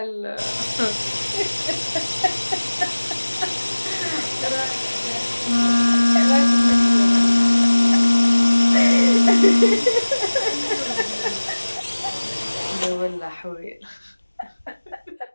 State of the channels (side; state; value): both; inverted; correlation -1.00